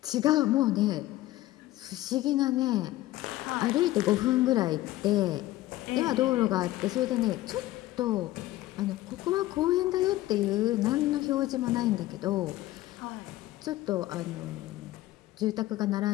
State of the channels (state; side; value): quieter; right; 16.3 dB